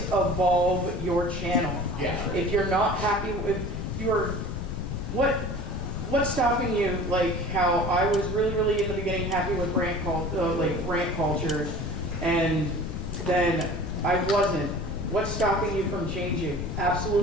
evolve your channel. Yeah. If you're not happy with what's stopping you? Like how I was really in the beginning happy with rant culture, and then I wasn't. What's stopping you from changing?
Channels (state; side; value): noise; left; rumble, 4 dB below the sound